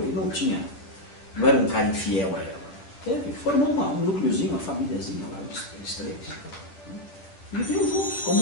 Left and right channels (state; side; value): late; right; 10 ms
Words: não era um cara infiel a ela. Ele formou um núcleozinho, uma famíliazinha lá, eles três. Viviam juntos, como